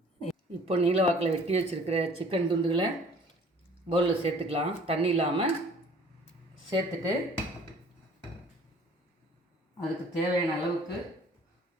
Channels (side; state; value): both; normal; correlation 0.52